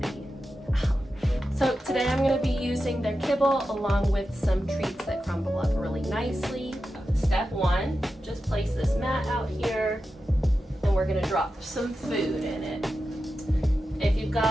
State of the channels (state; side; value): normal; both; correlation 0.91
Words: So today I'm going to be using their kibble along with some treats that crumble up really nicely. Step one, just place this mat out here and we're going to drop some food in it. If you've